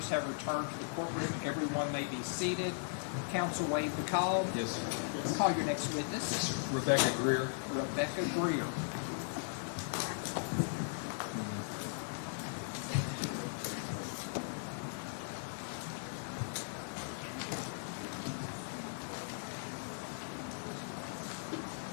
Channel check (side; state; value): right; silent; digital silence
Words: have returned to the courtroom. Everyone may be seated. Counsel waive the call. Yes, sir. Call your next witness. Yes, sir. Rebecca Greer. Rebecca Greer.